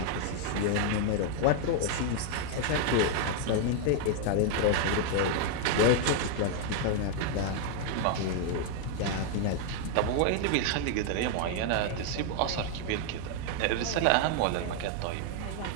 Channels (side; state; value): both; different; correlation 0.00